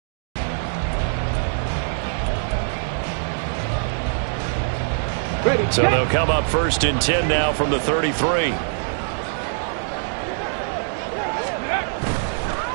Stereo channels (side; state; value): left; silent; 62 dB below the other